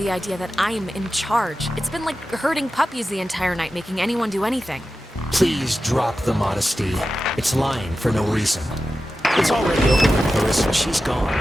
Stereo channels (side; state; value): both; normal; correlation 0.93